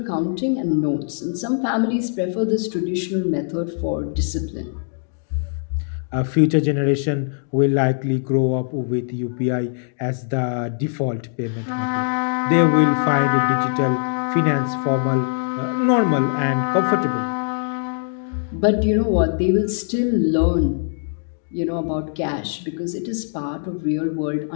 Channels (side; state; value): right; silent; digital silence